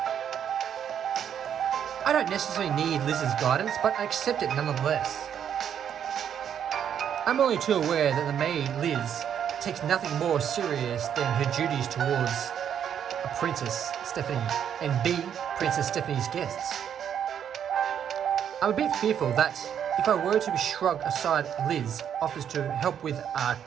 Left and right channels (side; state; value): left; quieter; 8.9 dB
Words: I don't necessarily need Liz's guidance, but I accept it nonetheless. I'm only too aware that the maid, Liz, takes nothing more serious than her duties towards a Princess Stephanie and B, Princess Stephanie's guests. I'm a bit fearful that if I were to shrug aside Liz offers to help with